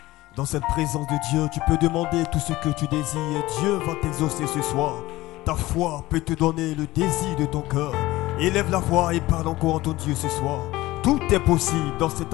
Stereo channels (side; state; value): right; quieter; 18.2 dB